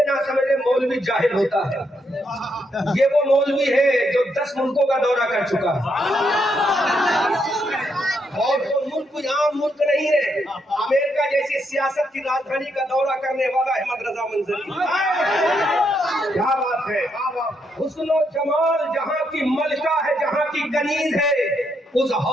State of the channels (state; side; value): normal; both; correlation 0.77